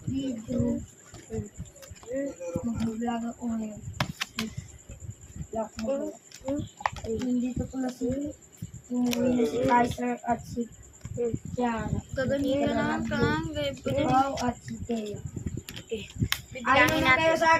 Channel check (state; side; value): identical; both; correlation 1.00